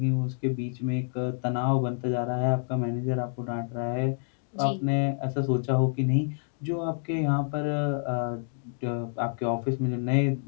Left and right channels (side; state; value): right; silent; digital silence